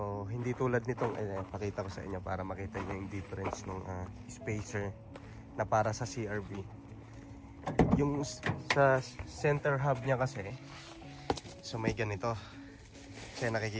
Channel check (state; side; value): identical; both; correlation 1.00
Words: hindi tulad nitong pakita ko sa inyo para makita niyo yung difference ng spacer na para sa CRB. Yung sa center hub niya kasi, so may ganito. Kasi